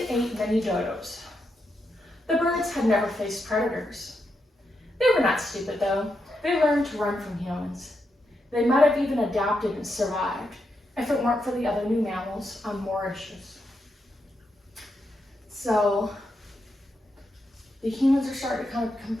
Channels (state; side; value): normal; both; correlation 0.83